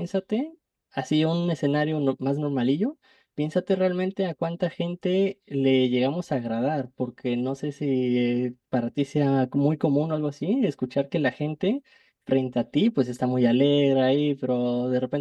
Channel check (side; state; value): both; identical; correlation 1.00